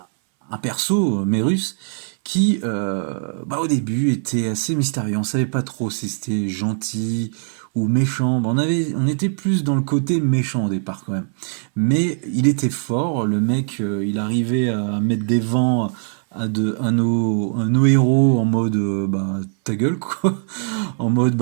perso, Merus, qui, bah, au début, était assez mystérieux. On savait pas trop si c'était gentil ou méchant. Bah, on était plus dans le côté méchant au départ quand même. Mais il était fort, le mec, il arrivait à mettre des vents à nos héros en mode bah ta gueule quoi, en mode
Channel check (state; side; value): silent; left; 65 dB below the other